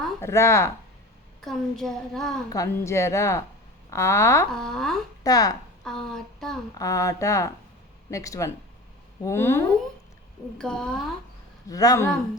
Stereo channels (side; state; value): both; normal; correlation 0.35